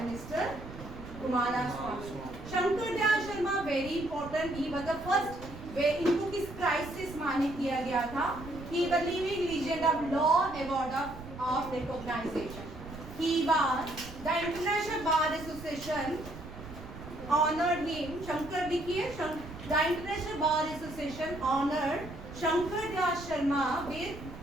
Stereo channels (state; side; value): noise; right; rumble, 13 dB below the sound